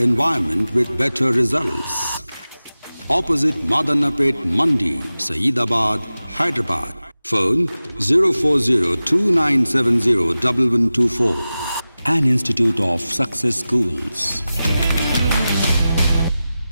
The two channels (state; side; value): inverted; both; correlation -0.95